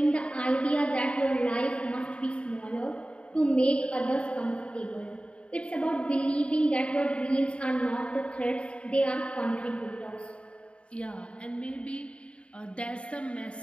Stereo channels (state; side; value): late; right; 0.059 ms